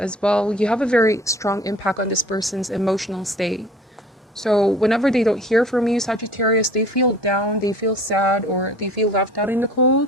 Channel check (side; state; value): both; normal; correlation 0.47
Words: well, you have a very strong impact on this person's emotional state. So whenever they don't hear from you, Sagittarius, they feel down, they feel sad, or they feel left out in the